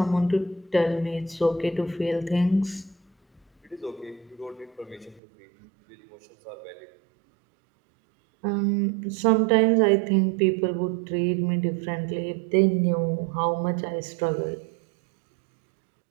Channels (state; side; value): drops out; left; at 5.2 s